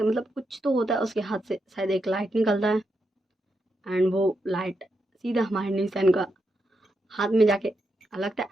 मतलब कुछ तो होता है उसके हाथ से, शायद एक लाइट निकलता है एंड वो लाइट सीधा हमारे न्यूसन का हाथ में जाके लगता है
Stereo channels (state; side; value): normal; both; correlation 0.83